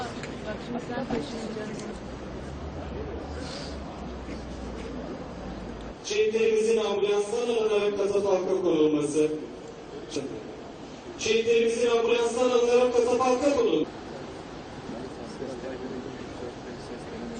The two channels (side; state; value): both; identical; correlation 1.00